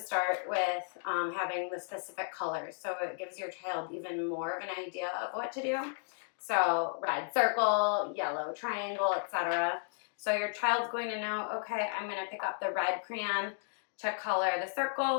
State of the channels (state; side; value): silent; right; digital silence